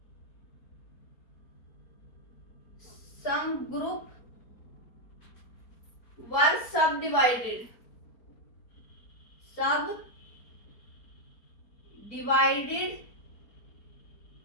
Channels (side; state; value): right; late; 4.3 ms